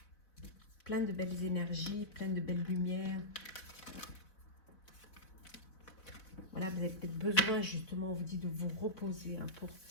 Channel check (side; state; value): right; late; 3.9 ms